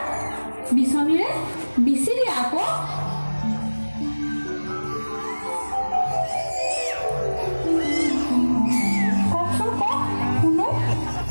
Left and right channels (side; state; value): both; inverted; correlation -1.00